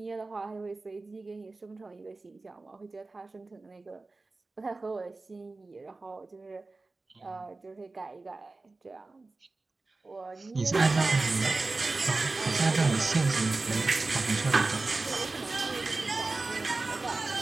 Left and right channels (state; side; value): quieter; left; 3.5 dB